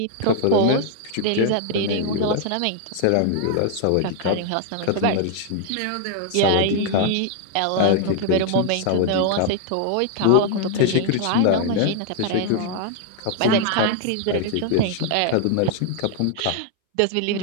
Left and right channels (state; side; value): different; both; correlation 0.00